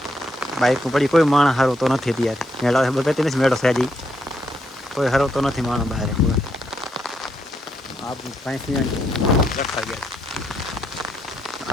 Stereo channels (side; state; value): both; normal; correlation 0.77